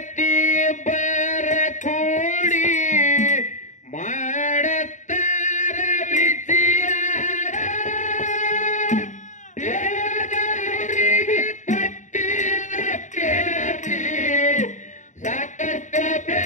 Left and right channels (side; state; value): right; late; 0.36 ms